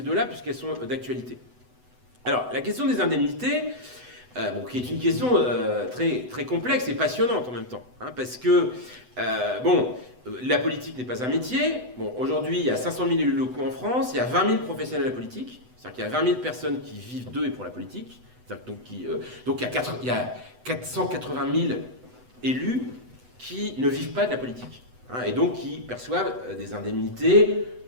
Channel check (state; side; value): late; left; 8.0 ms